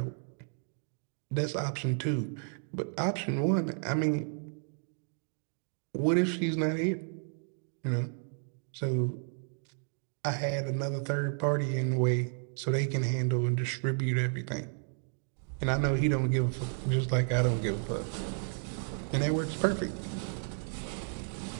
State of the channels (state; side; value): silent; left; 56 dB below the other